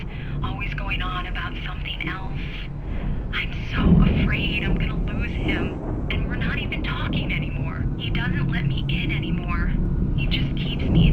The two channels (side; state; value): both; identical; correlation 1.00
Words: always going on about something else. I'm so afraid I'm gonna lose him, and we're not even talking anymore. He doesn't let me in anymore. He just keeps me